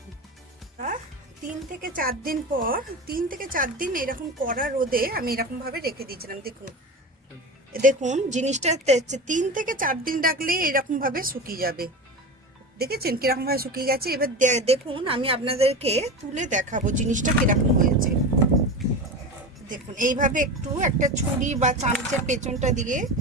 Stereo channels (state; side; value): normal; both; correlation 0.26